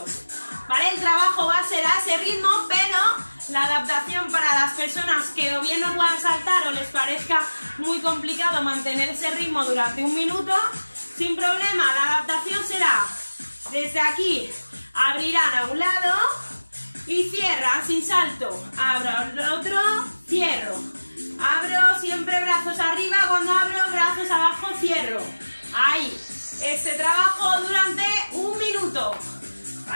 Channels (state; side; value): inverted; both; correlation -1.00